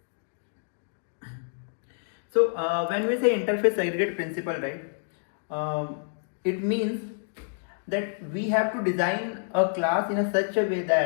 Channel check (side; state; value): right; silent; digital silence